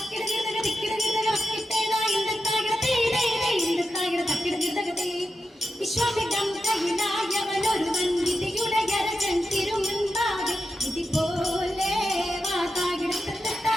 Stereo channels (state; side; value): normal; both; correlation 0.90